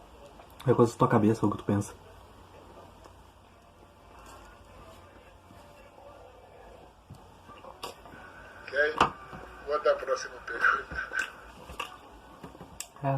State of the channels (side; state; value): both; identical; correlation 1.00